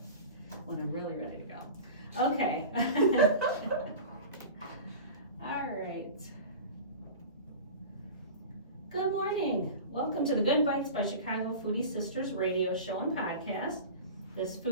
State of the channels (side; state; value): both; inverted; correlation -0.34